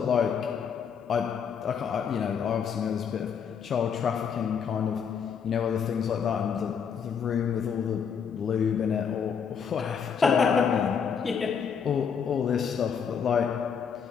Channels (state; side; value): quieter; right; 6.9 dB